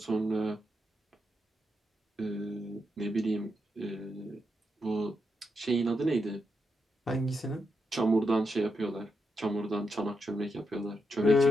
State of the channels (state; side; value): normal; both; correlation 0.83